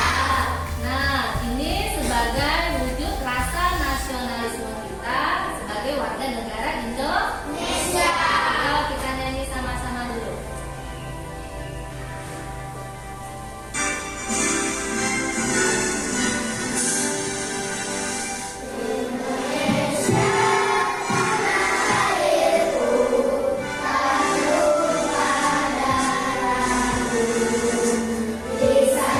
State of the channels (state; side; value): identical; both; correlation 1.00